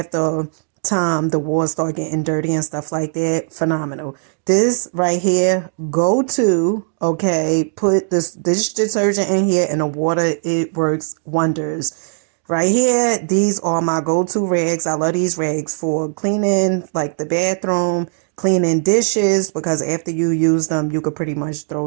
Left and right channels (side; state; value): left; silent; digital silence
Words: time the walls start getting dirty and stuff like that. Phenomenal. This right here, go to, okay, put this dish detergent in here and the water, it works wonders. Right here, these are my go-to rags. I love these rags for cleaning like the bathroom, cleaning dishes, because after you use them, you could pretty much